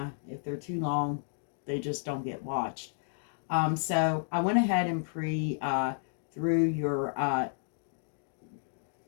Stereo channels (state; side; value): silent; right; digital silence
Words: if they're too long, they just don't get watched. So I went ahead and through your,